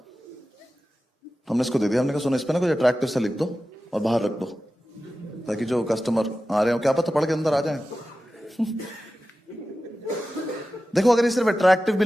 हमने इसको दे दिया। हमने कहा सुनो, इस पे ना कुछ अट्रैक्टिव सा लिख दो और बाहर रख दो, ताकि जो कस्टमर आ रहे हो क्या पता पढ़ के अंदर आ जाए। देखो अगर ये सिर्फ अट्रैक्टिव भी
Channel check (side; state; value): both; normal; correlation 0.94